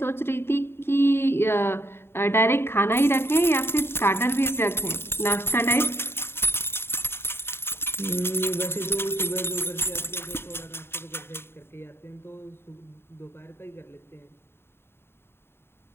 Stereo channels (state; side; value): late; right; 0.11 ms